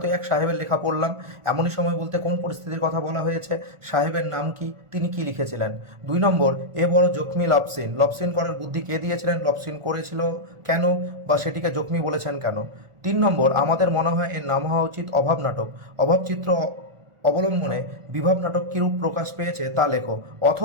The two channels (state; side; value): late; left; 1.4 ms